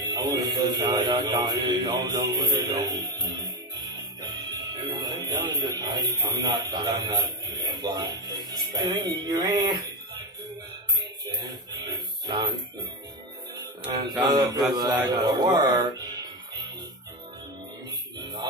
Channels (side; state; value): both; normal; correlation 0.15